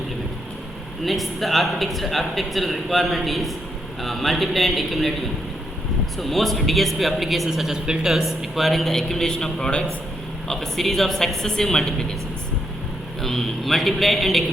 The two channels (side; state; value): both; normal; correlation 0.79